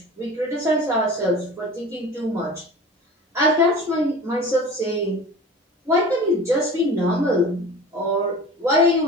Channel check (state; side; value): normal; both; correlation 0.37